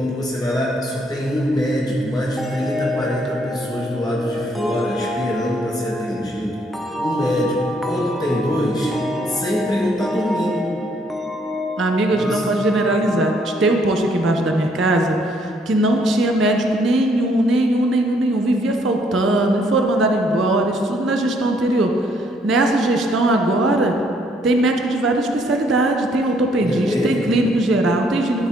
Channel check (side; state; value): both; normal; correlation 0.68